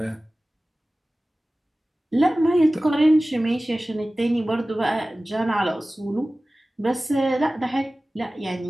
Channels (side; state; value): both; normal; correlation 0.97